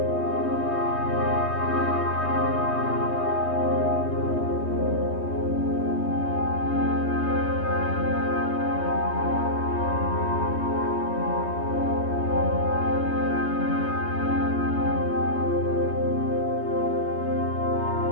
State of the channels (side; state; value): right; late; 3.2 ms